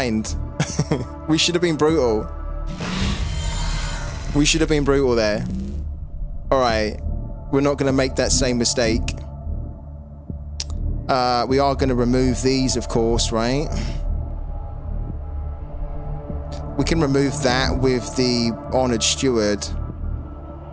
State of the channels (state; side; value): identical; both; correlation 1.00